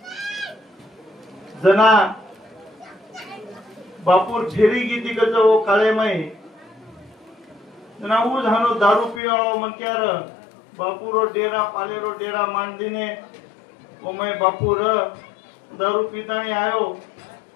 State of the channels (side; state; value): right; drops out; at 9.2 s